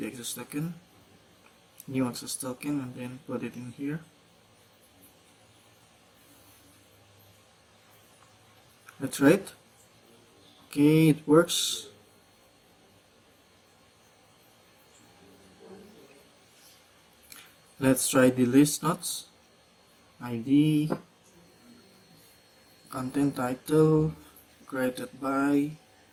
access token, new access token, and then put it in here. That's right. Okay, it works. Let's try the list nodes. ID, content title, created by,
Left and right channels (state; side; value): identical; both; correlation 1.00